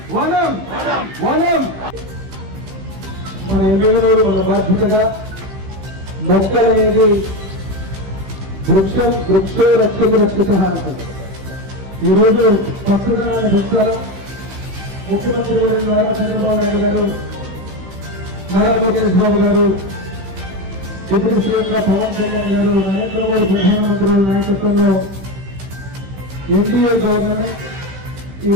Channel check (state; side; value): late; left; 15 ms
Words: वनम वनम మన ఎమ్మెల్యేలు మన బాధ్యతగా మొక్కలు అనేది వృక్షో రక్షతి రక్షిత అంటారు. ఈరోజు పచ్చదనాన్ని పెంచాలా ముఖ్యమంత్రి గారు నారా చంద్రబాబు నాయుడు గారు, నారా లోకేష్ బాబు గారు, డిప్యూటీ సీఎంగా పవన్ కళ్యాణ్ గారు, నరేంద్ర మోడీ ప్రధానమంత్రుల నాయకత్వంలో ఎన్డీఏ గవర్నమెంట్